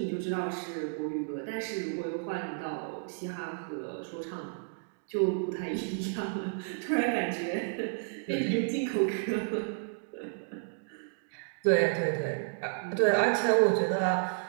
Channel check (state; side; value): silent; left; digital silence